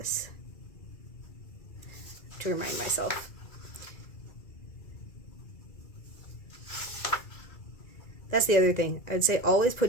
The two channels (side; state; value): right; late; 2.3 ms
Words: to remind myself. That's the other thing. I would say always